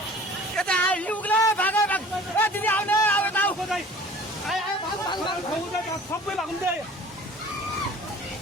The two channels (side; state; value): both; normal; correlation 0.46